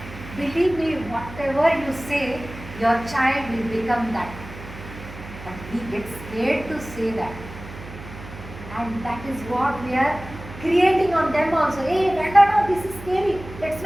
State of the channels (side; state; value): right; noise; hum, 14 dB below the sound